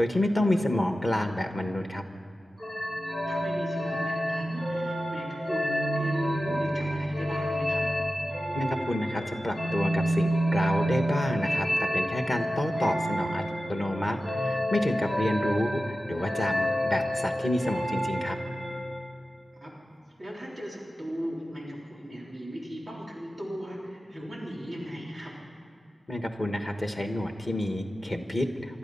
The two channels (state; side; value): normal; both; correlation 0.94